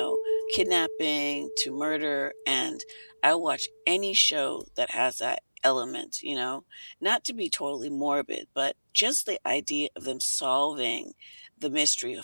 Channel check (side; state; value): both; inverted; correlation -1.00